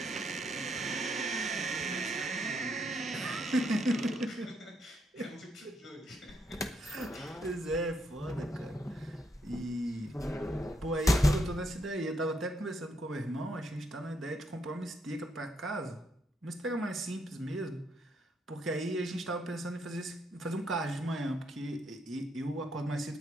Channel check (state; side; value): normal; both; correlation 0.76